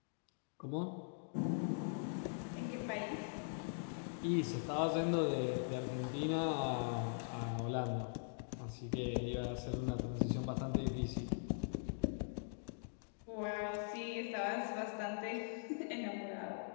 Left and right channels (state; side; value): silent; right; digital silence